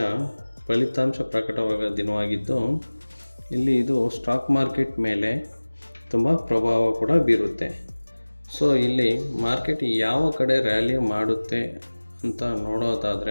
ಫಲಿತಾಂಶ ಪ್ರಕಟವಾದ ದಿನವಾಗಿದ್ದು, ಇಲ್ಲಿ ಇದು ಸ್ಟಾಕ್ ಮಾರ್ಕೆಟ್ ಮೇಲೆ ತುಂಬ ಪ್ರಭಾವ ಕೂಡ ಬೀರುತ್ತೆ. ಸೊ ಇಲ್ಲಿ ಮಾರ್ಕೆಟ್ ಯಾವ ಕಡೆ ರ್ಯಾಲಿ ಮಾಡುತ್ತೆ ಅಂತ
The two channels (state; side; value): inverted; both; correlation -1.00